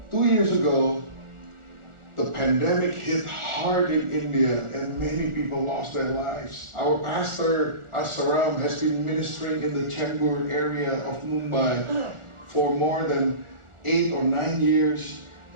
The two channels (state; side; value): late; left; 1.4 ms